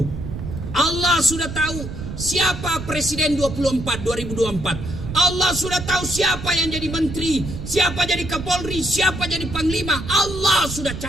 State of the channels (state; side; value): noise; right; rumble, 8 dB below the sound